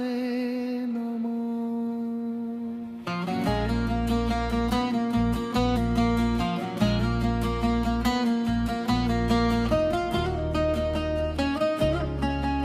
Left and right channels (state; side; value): identical; both; correlation 1.00